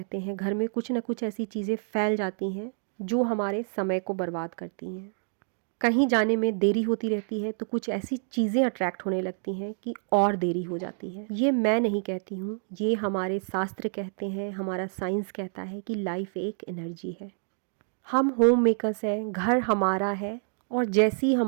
हैं, घर में कुछ ना कुछ ऐसी चीज़ें फैल जाती हैं जो हमारे समय को बर्बाद करती हैं। कहीं जाने में देरी होती रहती है तो कुछ ऐसी चीज़ें अट्रैक्ट होने लगती हैं कि और देरी हो जाती है। ये मैं नहीं कहती हूँ, ये हमारे शास्त्र कहते हैं, हमारा साइंस कहता है कि लाइफ एक एनर्जी है। हम होम मेकर्स हैं, घर हमारा है, और जैसी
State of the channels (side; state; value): left; silent; 56 dB below the other